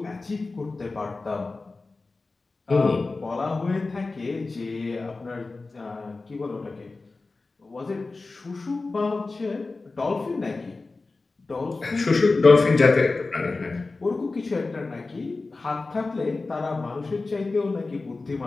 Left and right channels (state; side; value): quieter; right; 3.6 dB